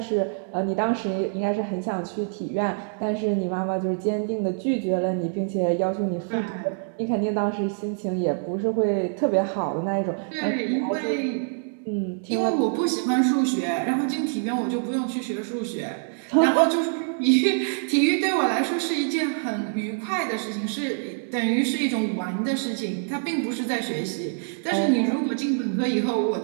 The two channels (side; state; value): left; silent; digital silence